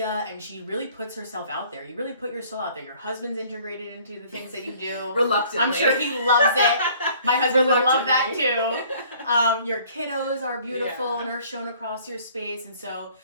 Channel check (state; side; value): inverted; both; correlation -0.55